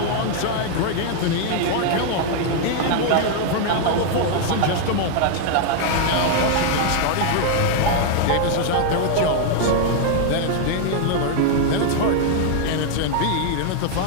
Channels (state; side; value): different; both; correlation 0.00